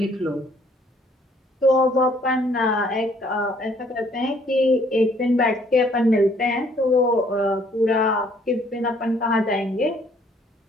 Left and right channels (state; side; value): normal; both; correlation 0.63